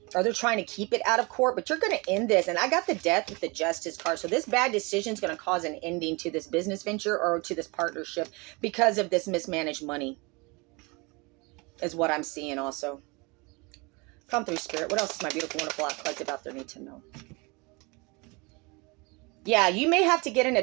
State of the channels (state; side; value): quieter; left; 27.5 dB